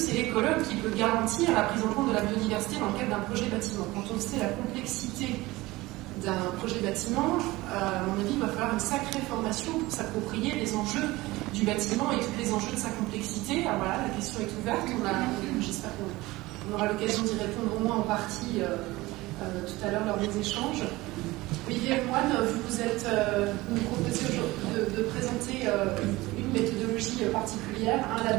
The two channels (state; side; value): quieter; left; 19.9 dB